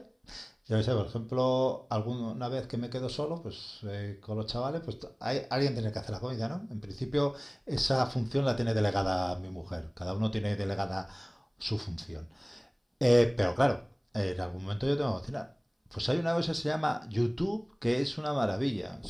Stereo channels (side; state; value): both; identical; correlation 1.00